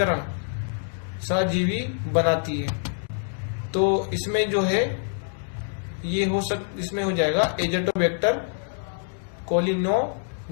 सहजीवी बनाती है? तो इसमें जो है ये इसमें हो जाएगा एजेटोबैक्टर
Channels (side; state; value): right; silent; digital silence